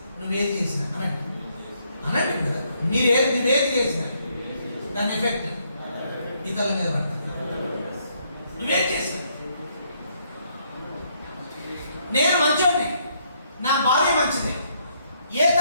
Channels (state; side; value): inverted; both; correlation -0.72